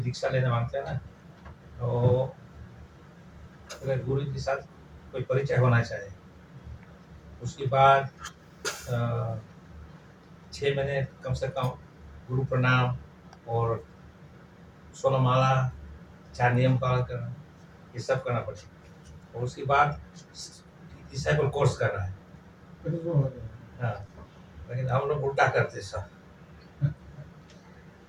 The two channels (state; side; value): identical; both; correlation 1.00